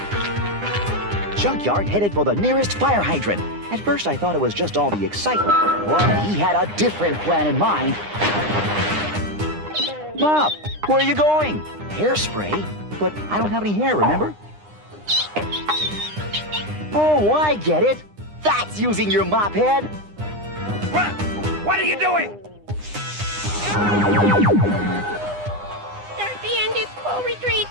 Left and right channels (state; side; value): late; left; 9.8 ms